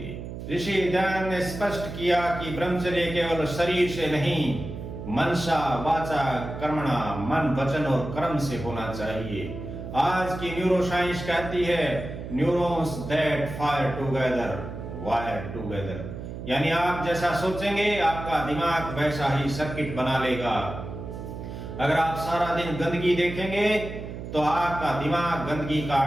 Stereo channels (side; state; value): right; noise; hum, 9 dB below the sound